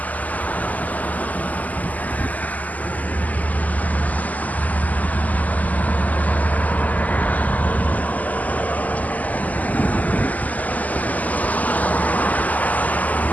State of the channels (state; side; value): late; right; 0.078 ms